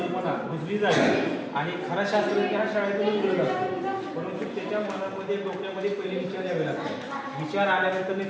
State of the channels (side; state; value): both; identical; correlation 1.00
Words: रुजली जावी आणि खरा शास्त्रज्ञ त्या शाळेतून घडत असतो. परंतु त्याच्या मनामध्ये डोक्यामध्ये पहिले विचार यावे लागतात. विचार आल्यानंतर